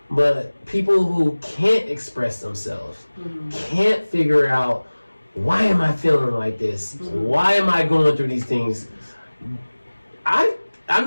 But people who can't express themselves, can't figure out, why am I feeling like this? Why am I going through these things? I'm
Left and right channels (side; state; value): both; inverted; correlation -1.00